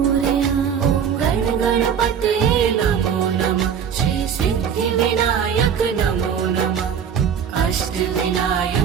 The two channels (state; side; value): quieter; left; 7.8 dB